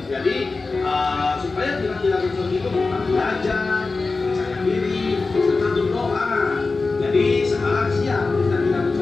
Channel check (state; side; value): quieter; right; 3.9 dB